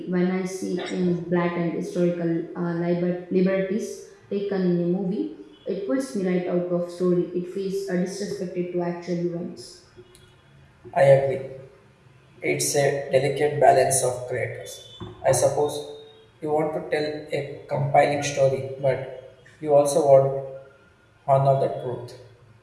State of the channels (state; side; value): identical; both; correlation 1.00